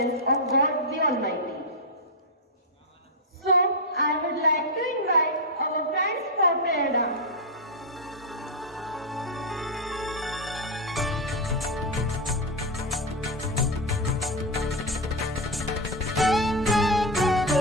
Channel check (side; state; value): both; normal; correlation 0.03